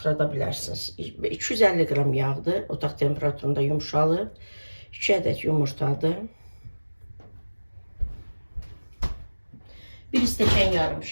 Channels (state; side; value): inverted; both; correlation -1.00